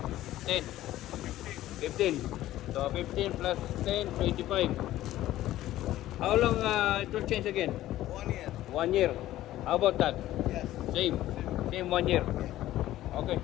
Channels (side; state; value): right; quieter; 14.5 dB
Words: 10. 15. So 15 plus 10, 25. How long it will change again? 1 year. 1 year. How about that? Yes. Same. Same 1 year. Okay.